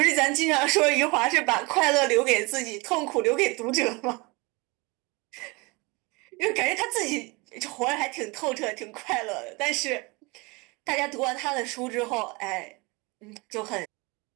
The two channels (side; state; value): left; quieter; 26.5 dB